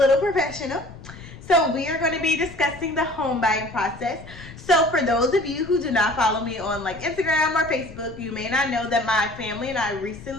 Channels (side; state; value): left; noise; rumble, 17 dB below the sound